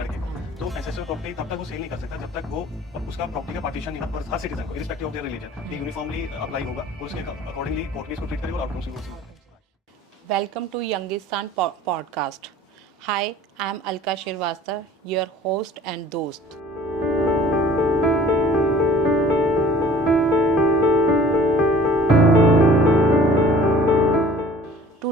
को। तो एंसेस्ट्रल प्रॉपर्टी तब तक वो सेल नहीं कर सकता जब तक वो उसका प्रॉपर्टी का पार्टीशन नहीं हो, हर सिटीजन को इरिस्पेक्टिव ऑफ देयर रिलीजन ये यूनिफॉर्मली अप्लाई होगा और उसके अकॉर्डिंगली कोर्ट भी इसको ट्रीट करेगा और आउटकम्स भी होगा। Welcome to Youngistan podcast. Hi, I am Alka Shirvastav, your host and dost.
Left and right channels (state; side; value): normal; both; correlation 0.49